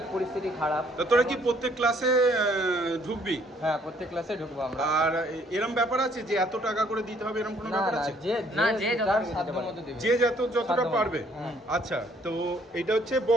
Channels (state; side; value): normal; both; correlation 0.64